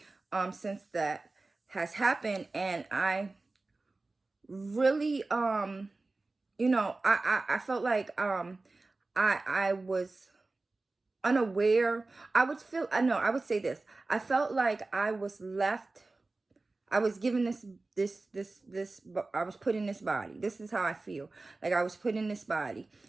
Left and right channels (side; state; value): left; quieter; 3.4 dB